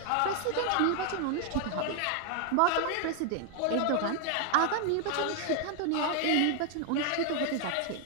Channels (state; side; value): different; both; correlation 0.00